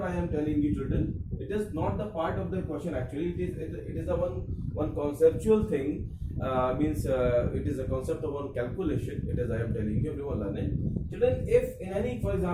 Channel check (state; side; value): identical; both; correlation 1.00